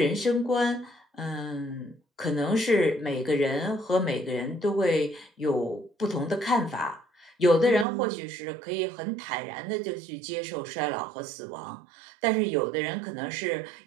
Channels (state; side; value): drops out; left; at 7.9 s